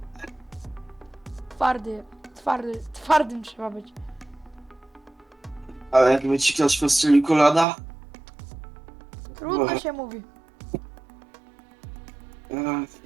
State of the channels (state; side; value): drops out; left; at 7.7 s